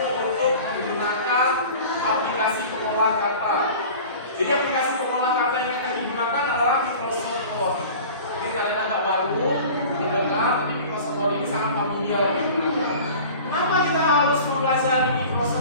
untuk menggunakan aplikasi pengolah kata. Jadi aplikasi pengolah kata yang akan digunakan adalah Microsoft Word. Ini kalian agak baru mendengar, tapi Microsoft Word ini sangat familiar digunakan. Kenapa kita harus mempelajari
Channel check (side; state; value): both; inverted; correlation -0.40